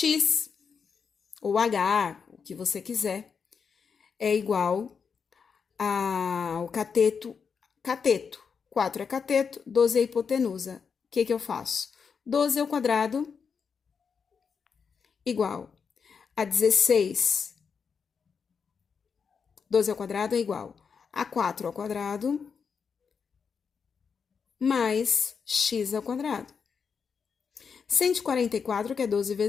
ou H, o que você quiser, é igual ao cateto. 4 é cateto, 12 é hipotenusa. O que eu faço? 12 ao quadrado igual a 16. 12 ao quadrado é igual a 4 ao quadrado mais x ao quadrado. 144, que é 12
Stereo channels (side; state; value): right; quieter; 6.1 dB